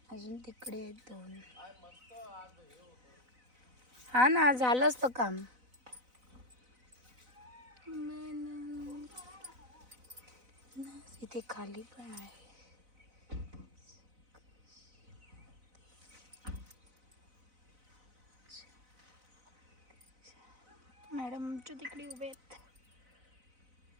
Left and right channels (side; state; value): left; late; 4.0 ms